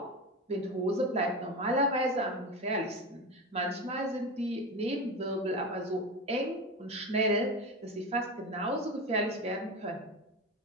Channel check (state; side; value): normal; both; correlation 0.23